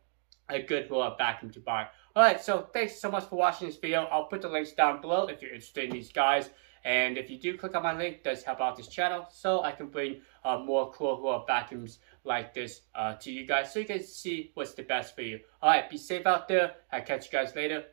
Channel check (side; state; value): left; silent; digital silence